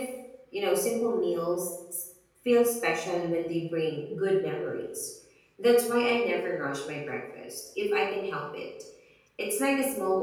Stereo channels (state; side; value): identical; both; correlation 1.00